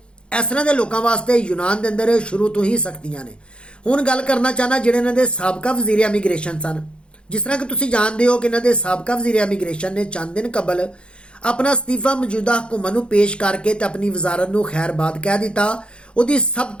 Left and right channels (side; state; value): right; late; 0.055 ms